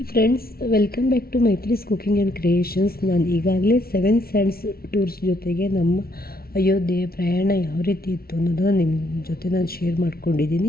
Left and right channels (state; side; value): late; right; 0.44 ms